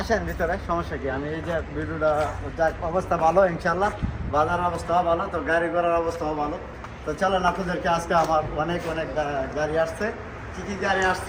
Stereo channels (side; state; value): both; identical; correlation 1.00